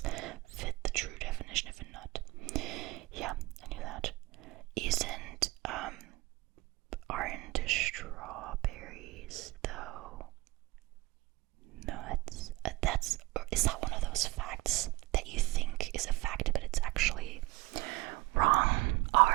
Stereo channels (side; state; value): left; quieter; 21.2 dB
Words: fit the true definition of a nut. Yeah, I knew that. Aren't strawberries though nuts? Is that one of those facts that you think is a fact but it's actually wrong?